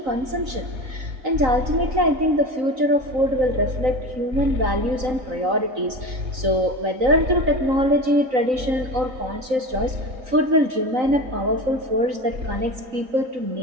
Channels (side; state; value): left; late; 3.9 ms